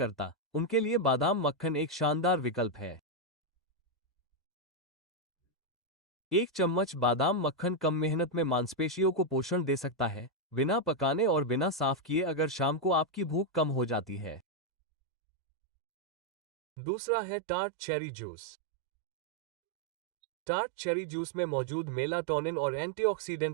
उनके लिए बादाम मक्खन एक शानदार विकल्प है। 1 चम्मच बादाम मक्खन कम मेहनत में मांसपेशियों को पोषण दे सकता है, बिना पकाने और बिना साफ किए, अगर शाम को आपकी भूख कम हो जाती है। दूसरा है tart cherry juice. Tart cherry juice में मौजूद मेलाटोनिन और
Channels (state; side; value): drops out; left; at 14.4 s